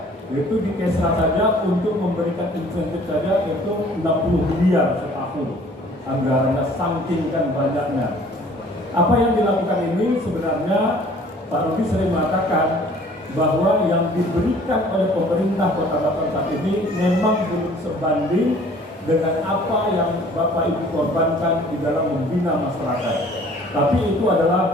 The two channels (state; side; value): normal; both; correlation 0.53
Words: Itu di Kesra saja untuk memberikan insentif saja itu 60 miliar setahun. Anggarannya saking kan banyaknya. Apa yang dilakukan ini sebenarnya Pak Rudi sering mengatakan bahwa yang diberikan oleh pemerintah Kota Batam saat ini memang belum sebanding dengan apa yang Bapak Ibu korbankan di dalam membina masyarakat. Tapi itu